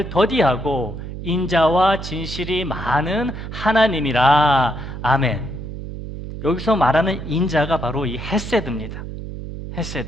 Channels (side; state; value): right; noise; hum, 9 dB below the sound